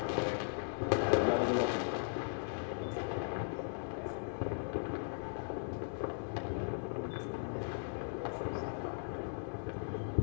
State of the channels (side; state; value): right; silent; digital silence